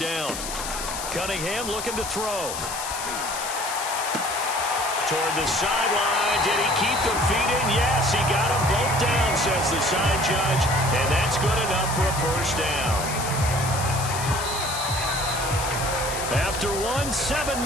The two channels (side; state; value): left; noise; hiss, 7 dB below the sound